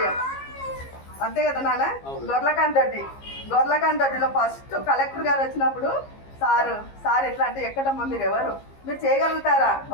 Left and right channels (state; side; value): late; right; 15 ms